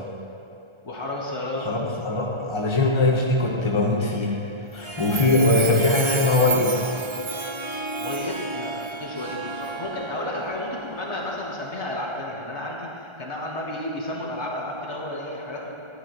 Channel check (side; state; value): left; late; 1.4 ms